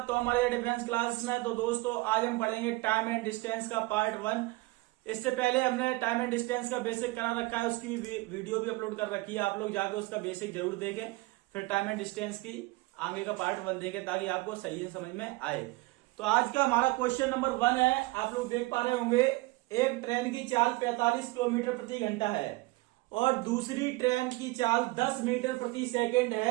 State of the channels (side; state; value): left; quieter; 22.2 dB